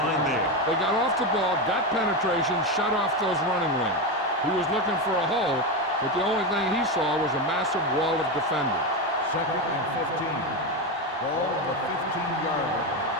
there. They got off the ball, got penetration, shut off those running lanes. He was looking for a hole, but the only thing he saw was a massive wall of defenders. 2nd and 15. Ball on the 15-yard line.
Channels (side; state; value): both; normal; correlation 0.14